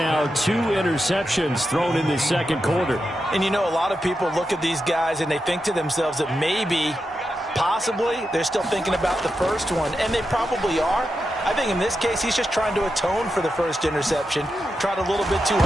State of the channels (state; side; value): normal; both; correlation 0.88